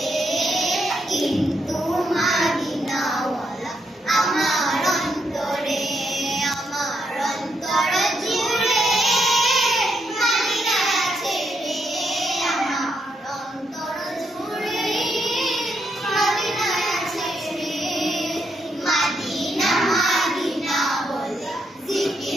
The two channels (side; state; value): both; normal; correlation 0.79